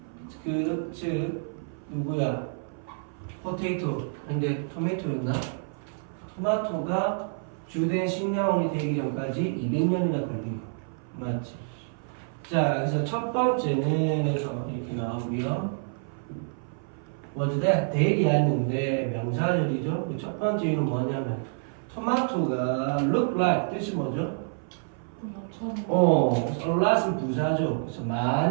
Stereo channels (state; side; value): silent; left; 57 dB below the other